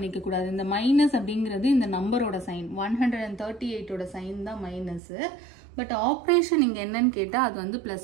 கூடாது. இந்த மைனஸ் அப்படிங்கிறது இந்த நம்பரோட சைன், 138ஓட சைன் தான் மைனஸ். பட் ஆப்ரேஷன் இங்க என்னன்னு கேட்டா அது வந்து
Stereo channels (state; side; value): drops out; left; at 5.0 s